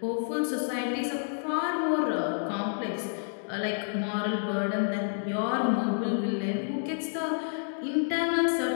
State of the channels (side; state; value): right; silent; digital silence